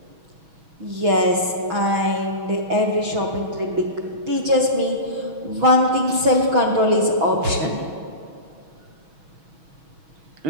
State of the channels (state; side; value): late; left; 6.3 ms